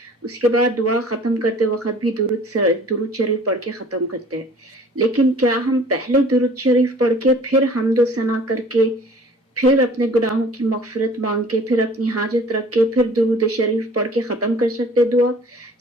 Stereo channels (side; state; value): both; normal; correlation 0.50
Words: اس کے بعد دعا ختم کرتے وقت بھی درود شریف پڑھ کے ختم کرتے ہیں. لیکن کیا ہم پہلے درود شریف پڑھ کے پھر حمد و ثنا کر کے پھر اپنے گناہوں کی مغفرت مانگ کے پھر اپنی حاجت رکھ کے پھر درود شریف پڑھ کے ختم کر سکتے دعا؟